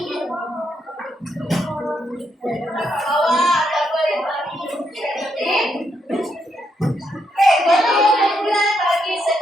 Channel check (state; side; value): normal; both; correlation 0.79